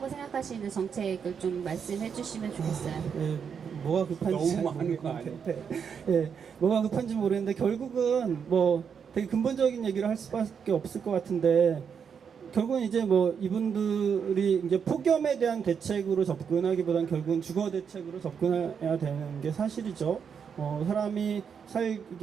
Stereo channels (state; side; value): quieter; left; 6.9 dB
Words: 생각하시는 정책을 좀 말씀해 주시면 좋겠어요. 뭐가 급한지 너무 많은 거 아니에요? 뭐가 급한지 모르겠는데 결국은 되게 근본적인 얘기를 할 수밖에 없을 것 같은데 결국은 이제 이분들이 이제 폭염에 대한 대책으로 접근하기보다는 결국은 주거 대책으로 접근해야 되는 게 사실이죠. 사람이